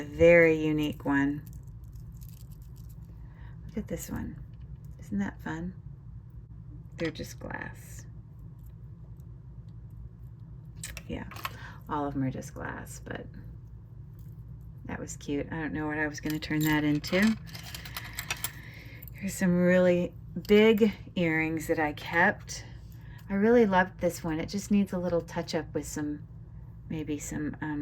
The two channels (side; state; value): both; identical; correlation 1.00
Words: very unique one. Look at this one. Isn't that fun? They're just glass. Yeah, all of them are just glass, but that was cute. I don't know what I was going to turn that into. Here's some really big earrings that I kept. I really loved this one. It just needs a little touch up with some, maybe